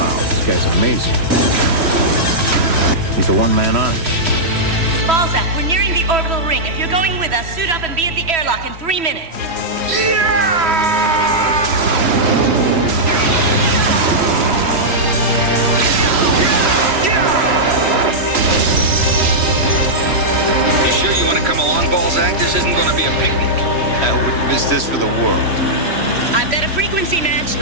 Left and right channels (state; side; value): late; left; 3.0 ms